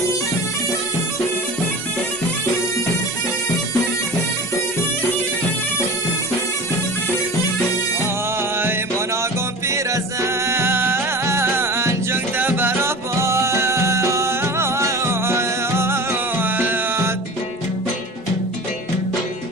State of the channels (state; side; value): normal; both; correlation 0.35